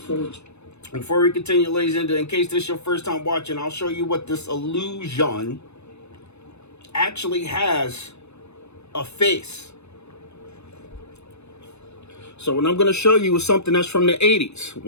Before we continue, ladies and gentlemen, in case this is your first time watching, I'll show you what this illusion actually has a face. So what I'm going to show you is something that's from the 80s.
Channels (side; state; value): right; late; 0.81 ms